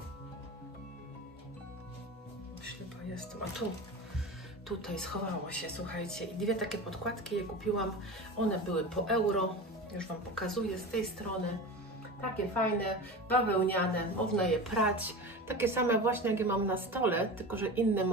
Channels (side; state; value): both; normal; correlation 0.29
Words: Ślepa jestem, a tu. Tutaj schowało się, słuchajcie. I dwie takie podkładki je kupiłam. One były po euro. Już Wam pokazuję z tej strony. Takie fajne, bawełniane, można je prać. Takie same właśnie, jak je mam na stole, tylko że inny